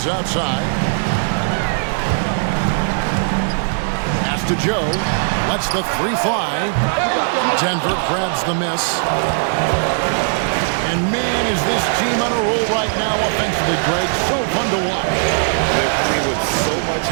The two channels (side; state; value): left; silent; digital silence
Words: outside. Pass to Joe. Lets the 3 fly. Denver grabs the miss. And man, is this team on a roll right now offensively, Greg. So fun to watch. They're playing with so much